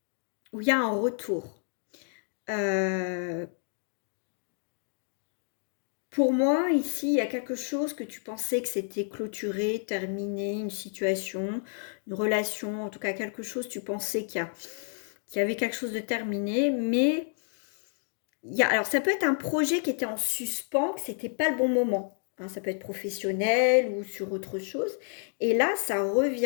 où il y a un retour. Pour moi, ici, il y a quelque chose que tu pensais que c'était clôturé, terminé, une situation, une relation, en tout cas quelque chose, tu pensais qu'il y avait quelque chose de terminé, mais alors ça peut être un projet qui était en suspens, que c'était pas le bon moment. Hein, ça peut être professionnel ou sur autre chose. Et là, ça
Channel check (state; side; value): silent; right; 57 dB below the other